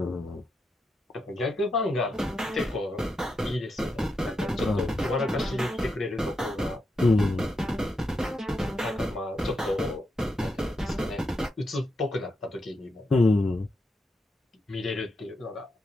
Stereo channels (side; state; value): both; normal; correlation 0.84